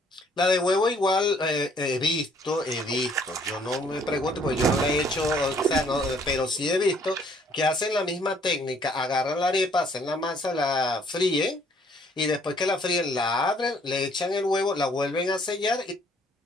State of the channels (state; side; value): normal; both; correlation 0.62